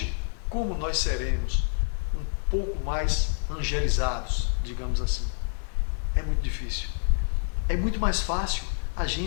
como nós seremos um pouco mais angelizados, digamos assim. É muito difícil. É muito mais fácil a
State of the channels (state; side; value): silent; right; digital silence